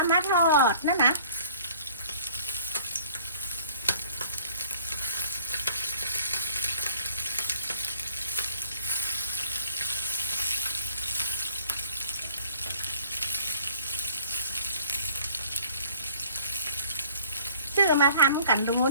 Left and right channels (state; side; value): inverted; both; correlation -0.55